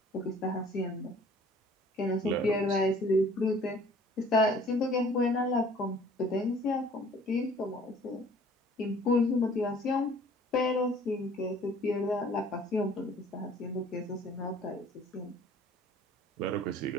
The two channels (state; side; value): normal; both; correlation 0.53